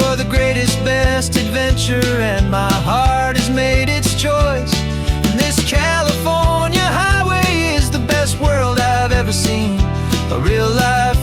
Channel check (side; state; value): both; identical; correlation 1.00